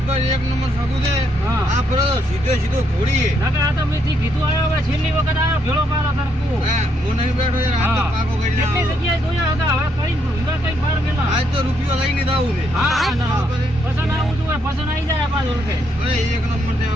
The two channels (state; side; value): normal; both; correlation 0.75